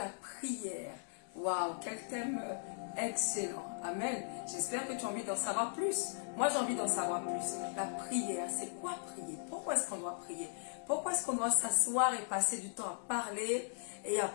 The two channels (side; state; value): right; silent; 52 dB below the other